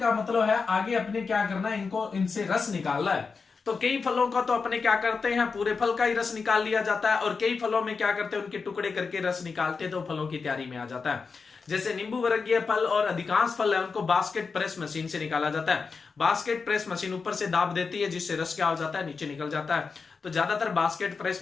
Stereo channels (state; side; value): quieter; right; 4.9 dB